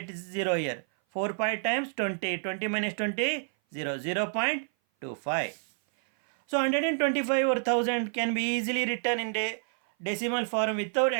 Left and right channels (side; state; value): left; silent; 57 dB below the other